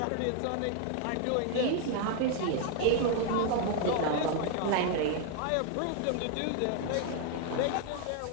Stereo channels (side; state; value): both; different; correlation 0.01